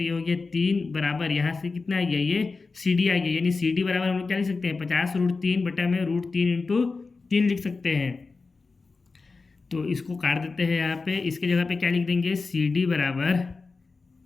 ये हो गया 3 बराबर यहाँ से कितना आ गया, ये सी डी आ गया। यानी सी डी बराबर हम लोग क्या लिख सकते हैं, 50√3 बटा में √3 इंटू 3 लिख सकते हैं। तो इसको काट देते हैं यहाँ पे, इसके जगह पे क्या लिख देंगे, सी डी बराबर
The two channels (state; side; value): quieter; right; 4.1 dB